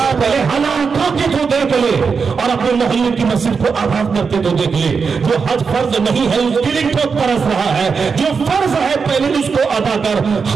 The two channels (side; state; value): left; quieter; 5.4 dB